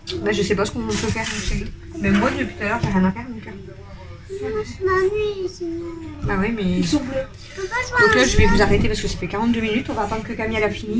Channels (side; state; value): both; identical; correlation 1.00